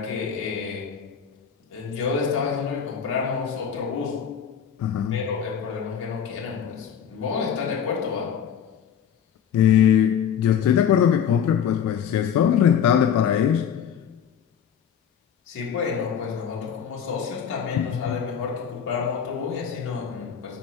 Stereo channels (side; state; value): right; quieter; 8.2 dB